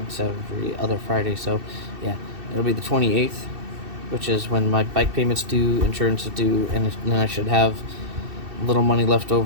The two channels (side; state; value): left; late; 2.6 ms